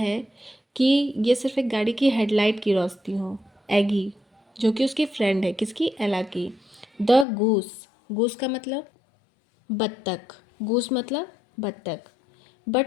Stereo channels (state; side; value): drops out; right; at 7.2 s